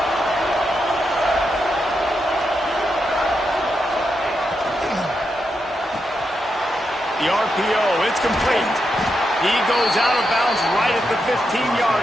The RPO, it's complete. He goes out of bounds right at the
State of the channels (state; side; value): normal; both; correlation 0.84